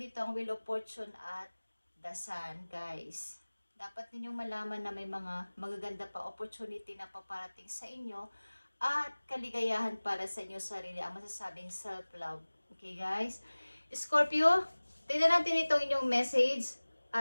ang Wheel of Fortune at the Sun, guys. Dapat ninyong malaman na may mga magaganda pa opportunity na paparating sa inyo at kaligayahan para sa inyo sarili. Ang masasabing self-love. Okay, guys? Scorpio, tignan natin itong inyong message.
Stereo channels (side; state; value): both; inverted; correlation -1.00